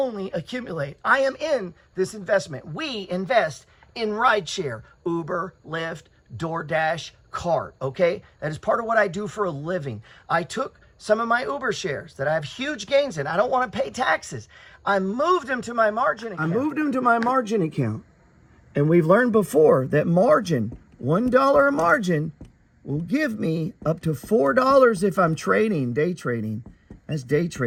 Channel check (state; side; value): identical; both; correlation 1.00